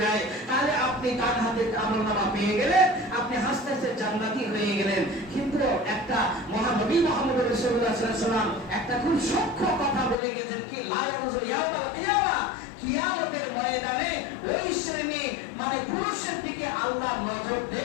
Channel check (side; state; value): right; drops out; at 10.2 s